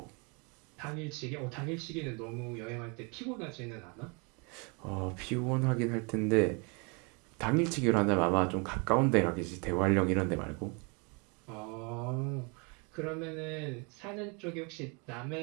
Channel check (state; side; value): quieter; left; 32.7 dB